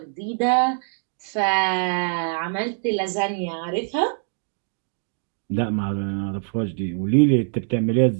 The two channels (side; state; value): left; silent; 57 dB below the other